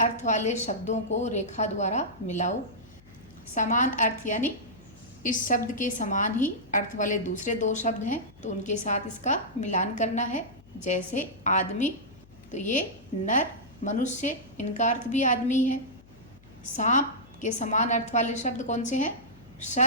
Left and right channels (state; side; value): noise; left; hum, 25 dB below the sound